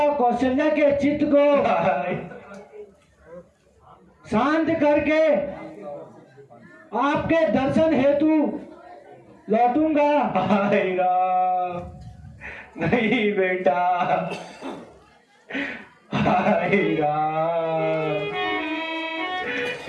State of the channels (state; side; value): identical; both; correlation 1.00